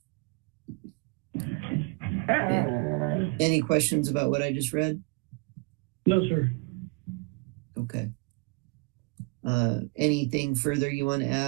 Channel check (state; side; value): quieter; left; 29.4 dB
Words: Any questions about what I just read? No, sir. Okay. Anything further you want to